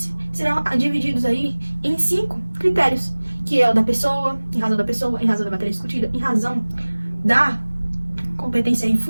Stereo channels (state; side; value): inverted; both; correlation -1.00